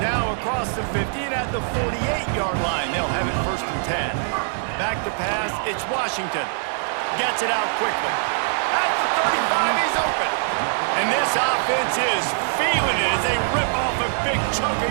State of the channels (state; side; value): silent; left; digital silence